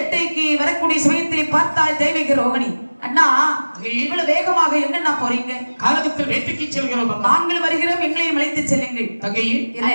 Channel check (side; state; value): both; inverted; correlation -1.00